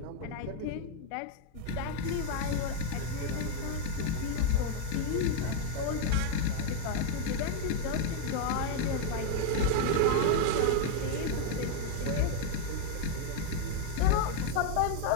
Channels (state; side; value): different; both; correlation 0.01